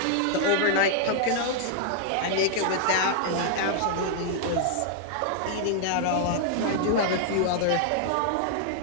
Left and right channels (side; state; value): both; different; correlation -0.01